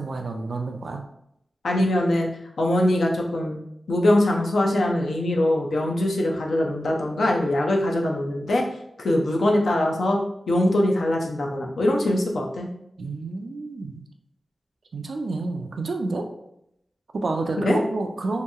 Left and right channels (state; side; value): normal; both; correlation 0.92